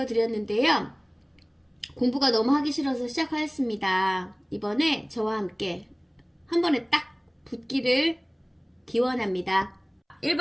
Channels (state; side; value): identical; both; correlation 1.00